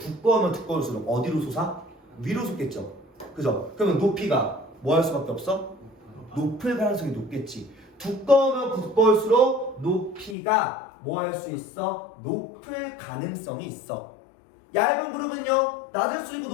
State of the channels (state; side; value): drops out; right; at 10.4 s